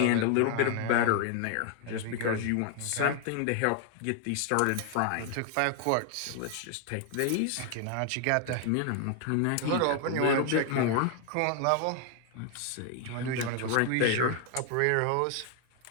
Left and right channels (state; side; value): different; both; correlation 0.00